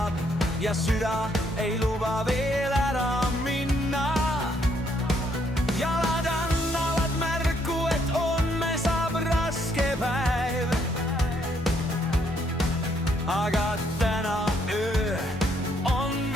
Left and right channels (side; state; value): both; normal; correlation 0.71